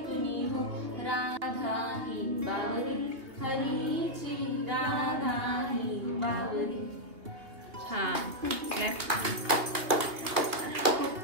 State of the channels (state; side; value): late; left; 2.6 ms